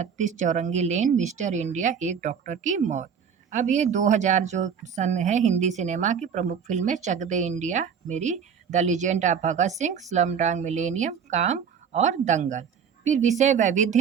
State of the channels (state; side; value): quieter; left; 7.2 dB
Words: चौरंगी लेन, मिस्टर इंडिया, एक डॉक्टर की मौत। अब ये 2000 जो सन है हिंदी सिनेमा की प्रमुख फ़िल्में, चक दे इंडिया मेरी, the legend of Bhagat Singh, Slumdog millennium, काम और दंगल। फिर विषय वैविध्य